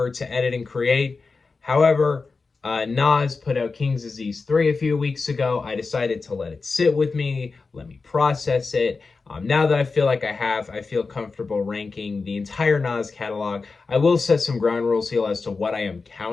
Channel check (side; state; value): right; quieter; 4.3 dB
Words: to edit and create. However, Nas put out King's Disease 3 a few weeks ago. I decided to let it sit with me, let me process it. Now that I feel like I feel comfortable ranking the entire Nas catalog. I will set some ground rules here as to what I am